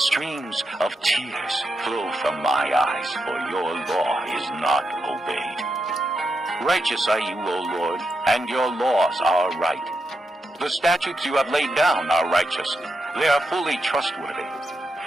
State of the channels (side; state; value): both; normal; correlation 0.84